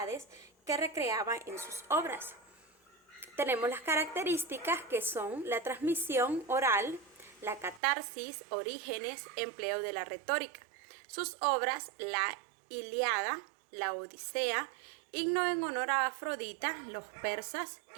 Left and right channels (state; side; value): drops out; left; at 7.8 s